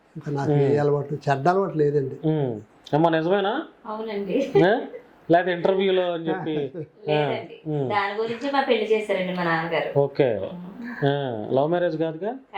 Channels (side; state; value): both; identical; correlation 1.00